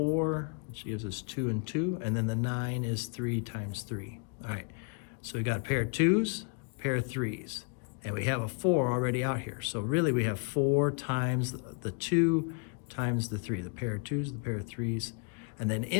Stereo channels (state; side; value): quieter; right; 37.4 dB